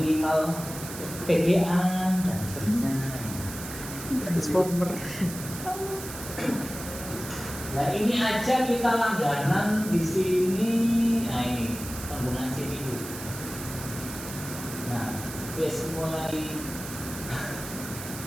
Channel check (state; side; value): noise; right; hiss, 10 dB below the sound